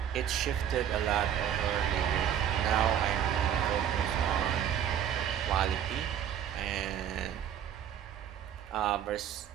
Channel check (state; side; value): quieter; left; 9.5 dB